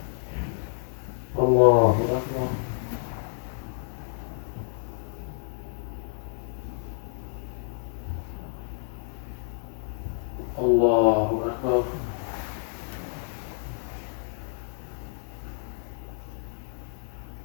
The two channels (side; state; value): right; silent; digital silence